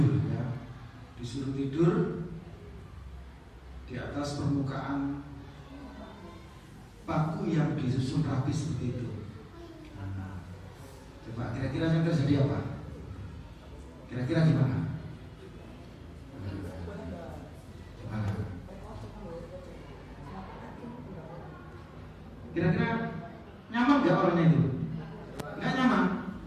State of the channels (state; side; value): identical; both; correlation 1.00